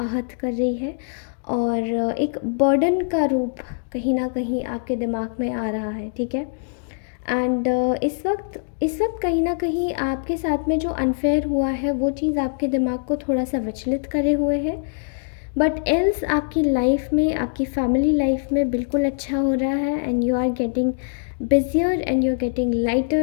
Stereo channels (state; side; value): silent; right; digital silence